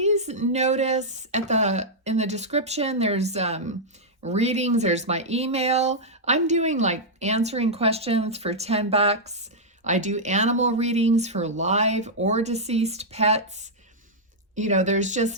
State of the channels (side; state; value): both; normal; correlation -0.07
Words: notice in the description there's readings, there's my email. I'm doing like answering questions for $10. I do animal readings for live or deceased pets. You know, there's